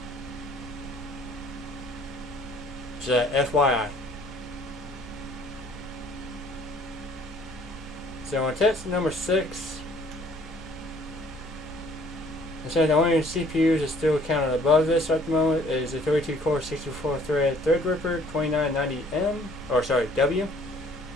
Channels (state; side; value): normal; both; correlation 0.58